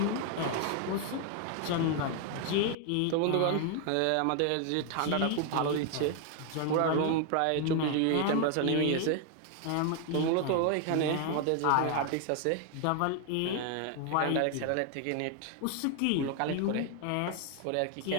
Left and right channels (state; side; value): different; both; correlation 0.00